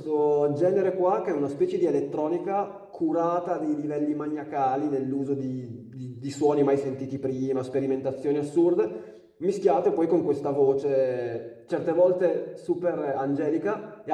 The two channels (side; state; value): both; identical; correlation 1.00